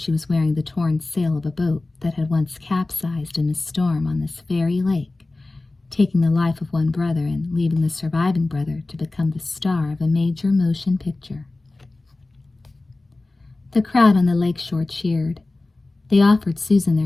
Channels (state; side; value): quieter; right; 3.1 dB